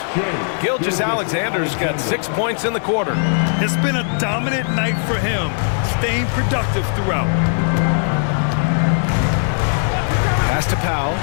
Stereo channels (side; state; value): right; silent; 55 dB below the other